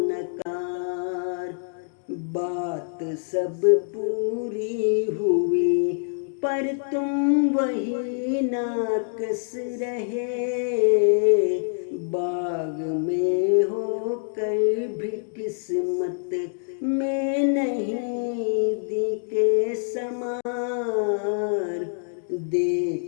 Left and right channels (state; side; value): silent; right; digital silence